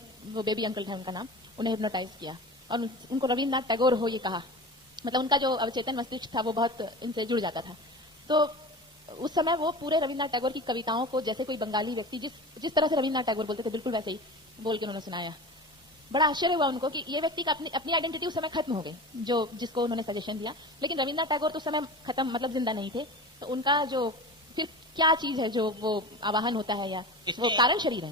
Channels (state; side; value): normal; both; correlation 0.33